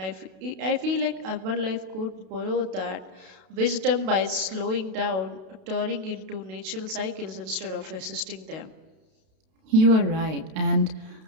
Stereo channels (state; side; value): late; left; 32 ms